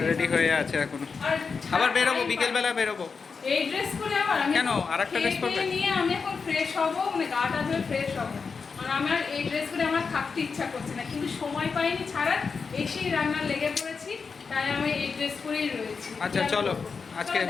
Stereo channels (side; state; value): right; quieter; 5.2 dB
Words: রেডি হয়ে আছে এখনো, আবার বেরোবো, বিকেলবেলা বেরোবো। এই ড্রেস করে আবার আমি কেন আরেকটা ড্রেস পরবে? নিয়ে আমি এখন ফ্রেশ হবো, মানে গাটা ধুয়ে ফ্রেশ হবো। আর আমার এই ড্রেস করে আমার থাকতে ইচ্ছা করছে না, কিন্তু সময় পাইনি ছাড়া, এসেই রান্না লেগে পড়েছি, তাই আমি এই ড্রেস পরেই রয়েছি। আচ্ছা চলো, আজকে